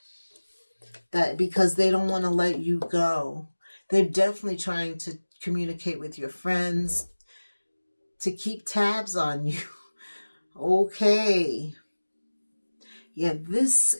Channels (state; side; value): inverted; both; correlation -1.00